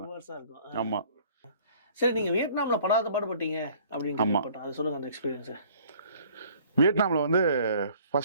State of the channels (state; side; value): inverted; both; correlation -0.54